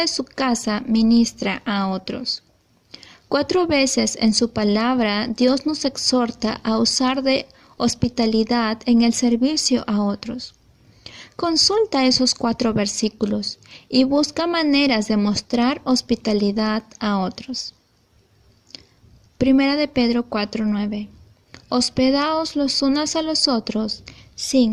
su casa ministra a otros. 4 veces en su palabra Dios nos exhorta a usar de hospitalidad en el servicio a otros. Consulta esos 4 versículos y busca maneras de mostrar hospitalidad a otros. Primera de Pedro 4:9. Hospedaos los unos a los otros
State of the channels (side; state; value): both; identical; correlation 1.00